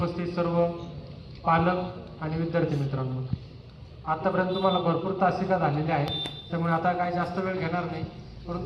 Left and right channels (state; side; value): identical; both; correlation 1.00